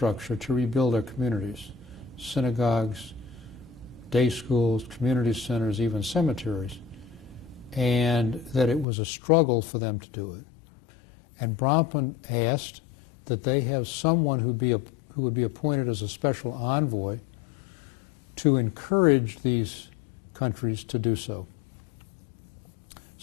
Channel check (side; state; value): right; drops out; at 8.8 s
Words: to rebuild their communities, synagogues, day schools, community centers, even cemeteries, and that it was a struggle for them to do it. And Bronfman asked that they have someone who would be appointed as a special envoy to encourage these countries to do so.